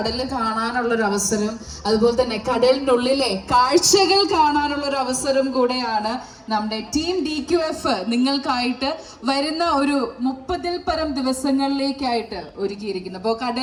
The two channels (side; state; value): both; identical; correlation 1.00